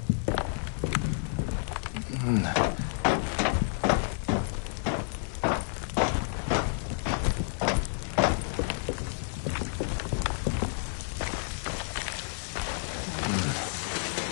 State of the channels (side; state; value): right; silent; digital silence